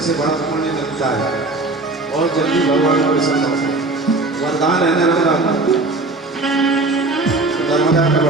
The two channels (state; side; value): quieter; left; 3.2 dB